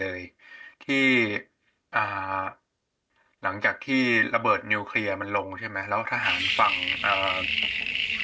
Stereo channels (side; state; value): both; identical; correlation 1.00